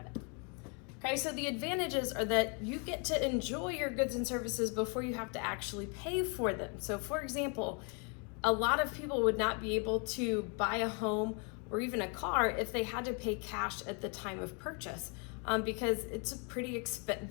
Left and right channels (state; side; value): quieter; right; 36.0 dB